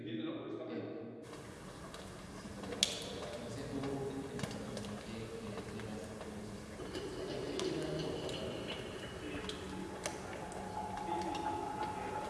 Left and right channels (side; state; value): both; identical; correlation 1.00